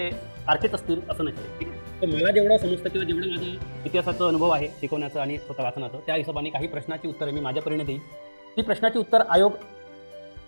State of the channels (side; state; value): both; inverted; correlation -1.00